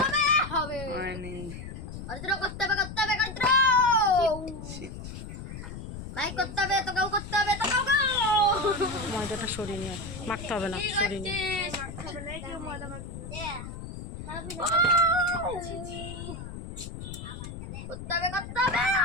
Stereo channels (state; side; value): noise; left; rumble, 10 dB below the sound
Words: করতে হবে ভাই, করতে হবে তো কাউ করতে হবে তো কাউ। ময়দাটা সরিয়ে নিয়ে মাখতে হবে না, সরিয়ে নিয়ে। করতে হবে